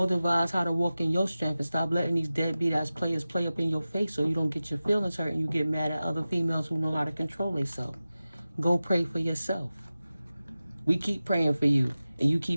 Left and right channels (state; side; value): inverted; both; correlation -0.95